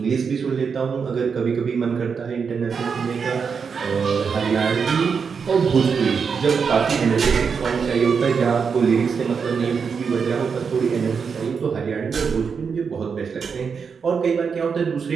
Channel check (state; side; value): quieter; left; 6.0 dB